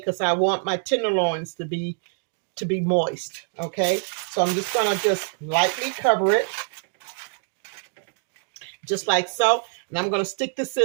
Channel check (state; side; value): silent; left; 61 dB below the other